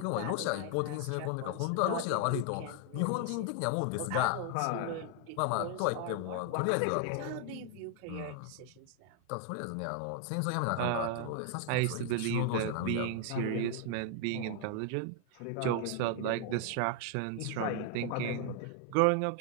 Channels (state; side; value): different; both; correlation 0.00